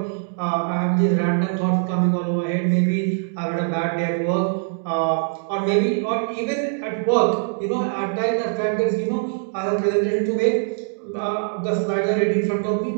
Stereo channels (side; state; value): left; silent; 64 dB below the other